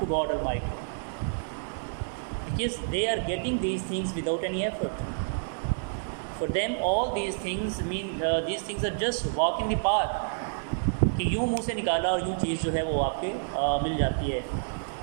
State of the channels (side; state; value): left; silent; 59 dB below the other